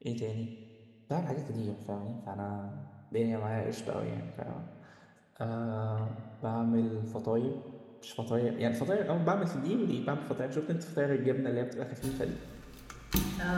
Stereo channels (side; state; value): both; identical; correlation 1.00